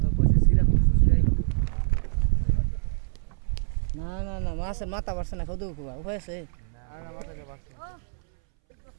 না না না মাছের মাথা বাড়ছে না খাওয়া খুব উপায় আছে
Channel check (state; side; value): silent; left; 61 dB below the other